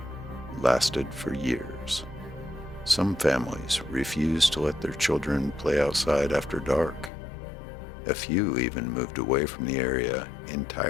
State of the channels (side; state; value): right; drops out; at 7.1 s